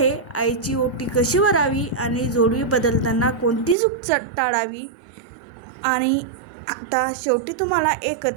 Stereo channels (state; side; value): drops out; left; at 3.8 s